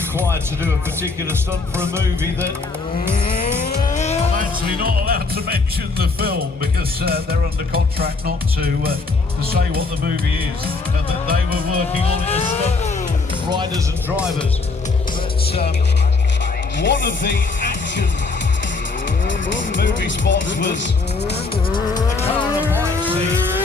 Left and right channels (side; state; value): right; quieter; 3.9 dB